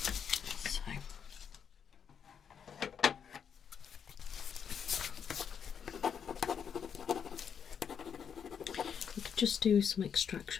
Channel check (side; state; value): right; quieter; 7.5 dB